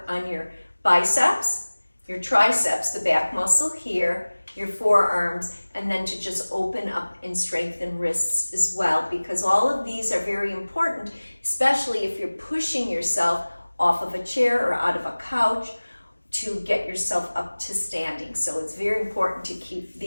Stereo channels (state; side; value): inverted; both; correlation -1.00